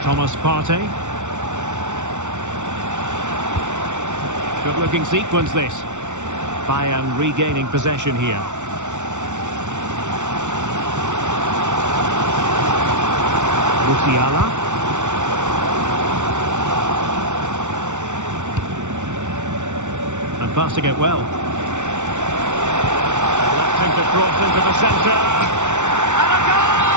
Thomas Partey. Good-looking sequence, this. Bayern regaining possession here. Musiala. And passing it well. Electing to cross into the centre. And a goal!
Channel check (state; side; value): late; left; 0.85 ms